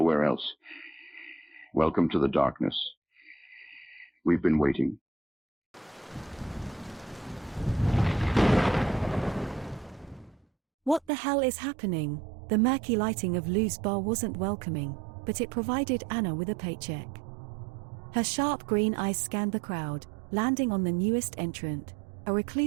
else. Welcome to the darkness. We've been waiting. What the hell is happening? The murky lighting of Lou's bar wasn't welcoming, but it provided Anna with a paycheck. Her sharp green eyes scanned the crowd, landing on the newest entrant, a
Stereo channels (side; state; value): left; drops out; at 11.1 s